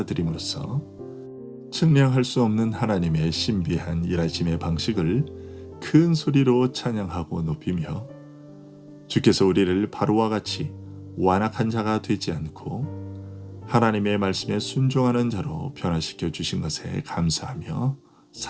측량할 수 없는 하나님의 신비한 일하심의 방식을 큰 소리로 찬양하고 높이며 주께서 우리를 바로와 같이 완악한 자가 되지 않고 하나님의 말씀에 순종하는 자로 변화시켜 주신 것에 감사하며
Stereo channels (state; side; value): identical; both; correlation 1.00